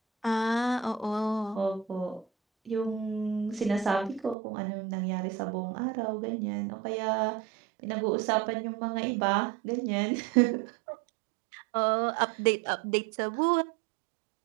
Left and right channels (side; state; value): left; drops out; at 4.4 s